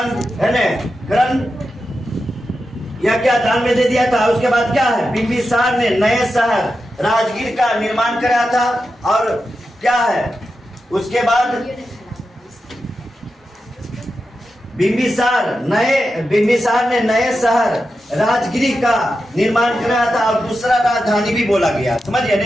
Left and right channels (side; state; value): both; normal; correlation 0.90